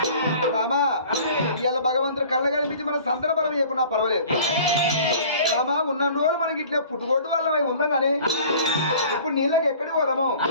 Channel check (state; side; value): inverted; both; correlation -0.47